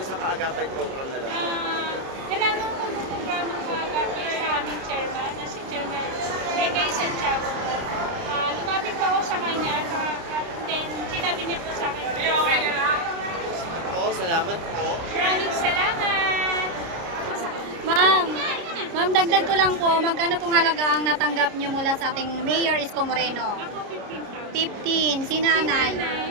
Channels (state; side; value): late; left; 30 ms